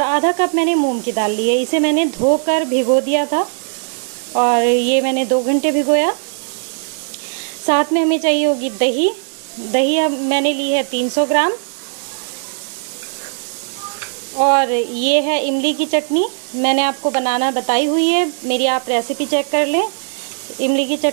आधा कप मैंने मूंग की दाल ली है। इसे मैंने धोकर भिगो दिया था और ये मैंने 2 घंटे भिगोया। साथ में हमें चाहिए होगी दही। दही अब मैंने ली है 300 ग्राम। और ये है इमली की चटनी, मैंने आपको बनाना बताई हुई है, मेरी आप रेसिपी चेक कर लें। इमली की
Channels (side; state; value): left; silent; digital silence